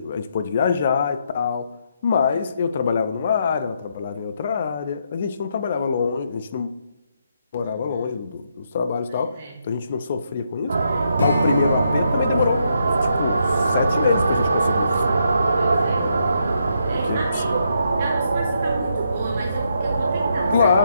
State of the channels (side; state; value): both; inverted; correlation -0.78